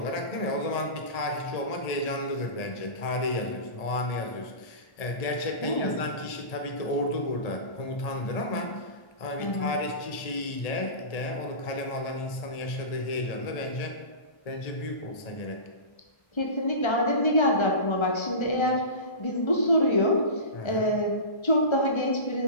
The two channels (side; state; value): right; late; 1.7 ms